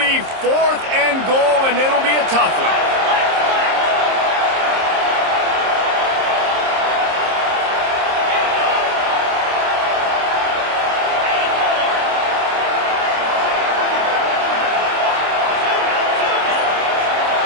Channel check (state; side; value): late; left; 26 ms